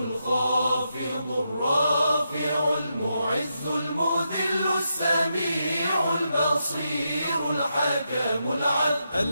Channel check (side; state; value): both; inverted; correlation -0.84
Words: الرافع المعز المذل السميع البصير الحكم العدل